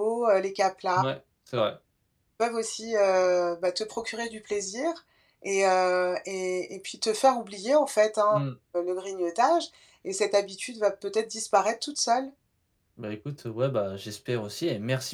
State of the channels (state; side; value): identical; both; correlation 1.00